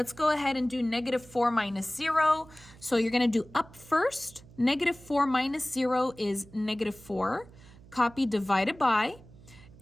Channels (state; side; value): noise; right; hum, 22 dB below the sound